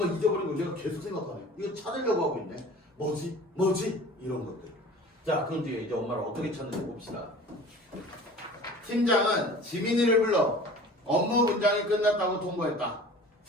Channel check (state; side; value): normal; both; correlation 0.43